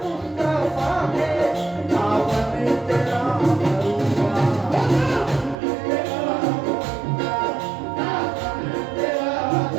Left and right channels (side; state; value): left; drops out; at 5.6 s